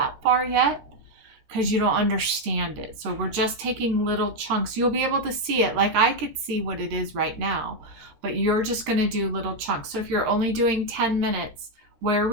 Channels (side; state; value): left; late; 13 ms